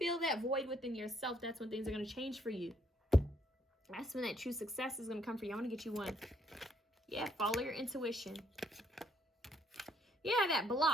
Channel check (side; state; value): both; normal; correlation 0.69